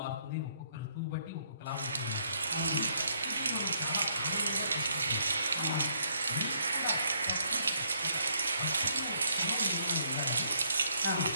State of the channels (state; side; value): inverted; both; correlation -0.71